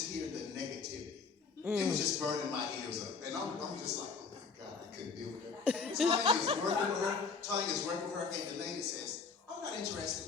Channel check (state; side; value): quieter; right; 5.1 dB